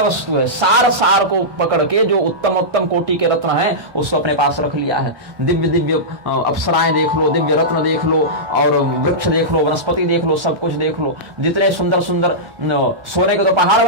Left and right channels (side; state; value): left; late; 1.2 ms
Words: वस्तु है, सार सार को पकड़ के जो उत्तम उत्तम कोटि के रत्न हैं उसको अपने पास रख लिया है। दिव्य दिव्य अप्सराएं देख लो, दिव्य रत्न देख लो, और वृक्ष देख लो, वनस्पति देख लो, सब कुछ देख लो। जितने सुंदर सुंदर सोने के तो पहाड़